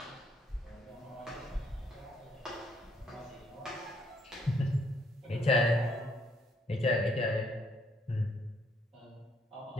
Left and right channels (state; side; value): normal; both; correlation 0.69